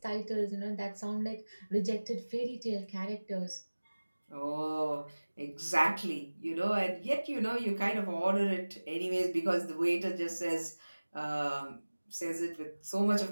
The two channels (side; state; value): both; inverted; correlation -1.00